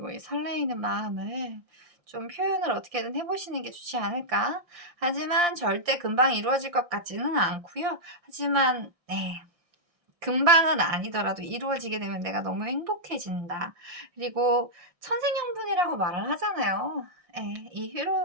이 설레이는 마음을 좀 표현을 어떻게든 해보시는 게 좋지 않을까. 하지만 절대 금방 이루어질 것 같지는 않고요. 하지만 금방은 아니더라도 이루어지게 되면 내가 너무 행복해진다. 그리고 천생연분이라고 말을 하잖아요. 이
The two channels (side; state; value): left; late; 1.6 ms